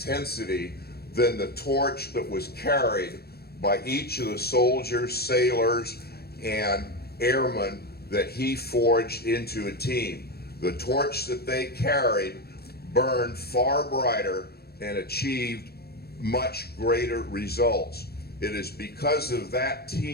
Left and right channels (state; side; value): late; right; 0.46 ms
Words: than the torch that was carried by each of the soldiers, sailors, and airmen that he forged into a team. The torch that they carried burned far brighter and achieved much greater results. It is because of that